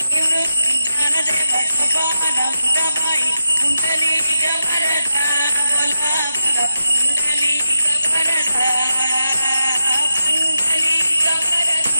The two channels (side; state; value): both; inverted; correlation -0.89